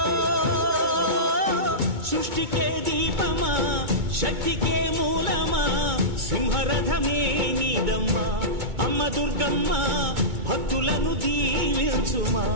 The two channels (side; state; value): left; late; 2.2 ms